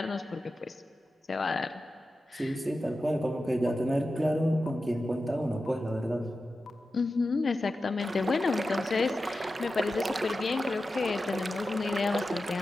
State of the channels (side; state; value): both; normal; correlation 0.92